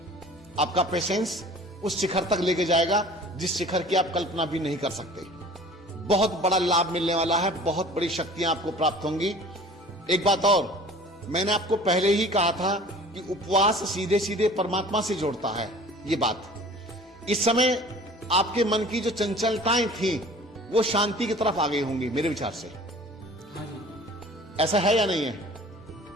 आपका पेशेंस उस शिखर तक लेके जाएगा जिस शिखर की आप कल्पना भी नहीं कर सकते। बहुत बड़ा लाभ मिलने वाला है, बहुत बड़ी शक्तियां आपको प्राप्त होंगी। एक बात और, मैंने आपको पहले ही कहा था कि उपवास सीधे सीधे परमात्मा से जोड़ता है। ये बात इस समय आपके मन की जो चंचलताएं थी वो शांति की तरफ आ गई होंगी मेरे विचार से। हाँ जी। ऐसा है या नहीं है?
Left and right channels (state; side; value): normal; both; correlation 0.46